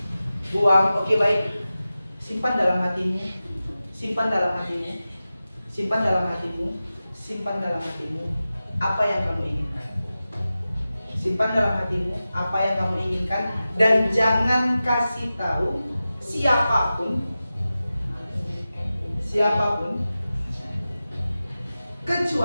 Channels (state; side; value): inverted; both; correlation -0.94